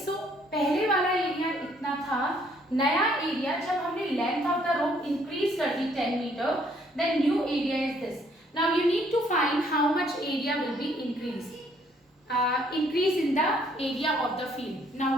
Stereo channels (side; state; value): both; normal; correlation 0.65